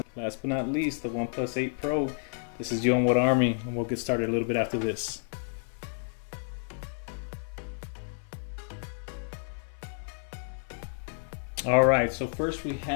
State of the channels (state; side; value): silent; right; 58 dB below the other